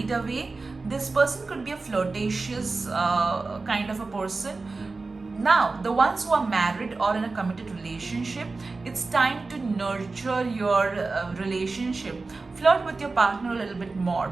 away. This person could be a flirtatious kind of a person. Now, the ones who are married or in a committed relationship, it's time to nurture your relationship. Flirt with your partner a little bit more.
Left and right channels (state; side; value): quieter; left; 3.8 dB